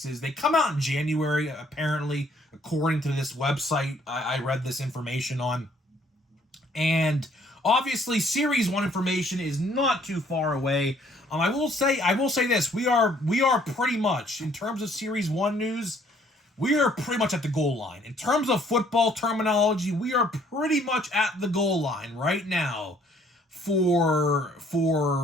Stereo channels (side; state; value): both; normal; correlation 0.62